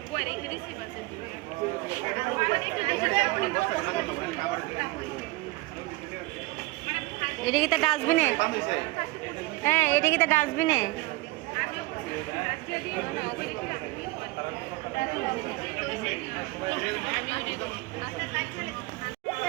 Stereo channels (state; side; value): quieter; left; 21.7 dB